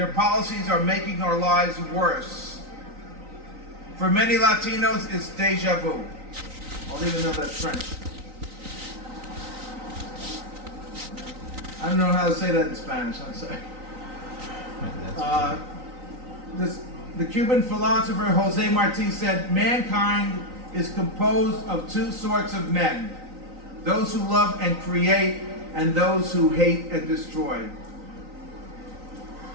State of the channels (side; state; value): left; late; 3.9 ms